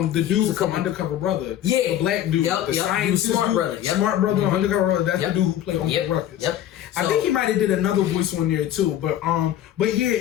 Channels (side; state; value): right; quieter; 11.6 dB